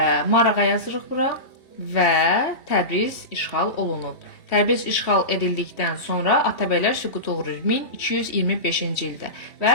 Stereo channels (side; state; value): right; late; 3.1 ms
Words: Marağa yazırıq bura və Təbriz işğal olunub. Təbriz işğal edildikdən sonra Atabəylər süquta uğrayır 1225-ci ildə